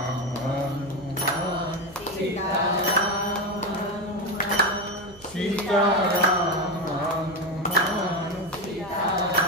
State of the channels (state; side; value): noise; right; hum, 24 dB below the sound